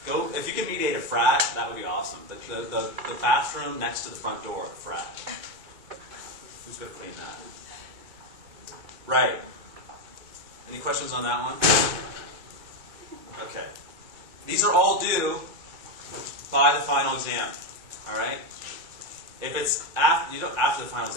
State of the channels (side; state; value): left; late; 2.2 ms